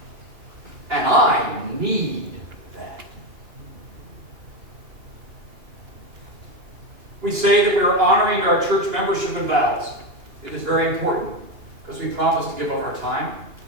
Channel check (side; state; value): left; late; 2.9 ms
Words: And I need that. We say that we are honoring our church membership and vows. It is very important because we promise to give up our time,